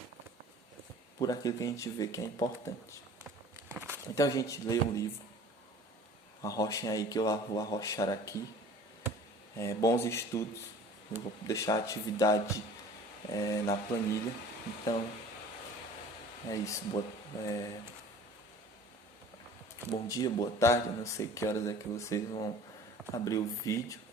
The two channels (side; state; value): both; normal; correlation 0.46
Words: por aquilo que a gente vê que é importante. Então, a gente lê um livro, arrochem aí que eu vou arrochar aqui. Bons estudos. Eu vou deixar a atividade na planilha. Então, é isso. Bom dia, boa tarde. Eu não sei que horas é que vocês vão abrir o vídeo.